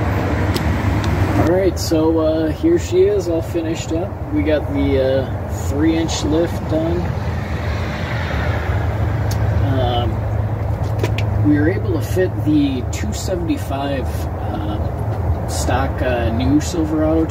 Alright, so here she is, all finished up. We got the 3-inch lift done. We were able to fit the 275 stock new Silverado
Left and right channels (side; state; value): both; identical; correlation 1.00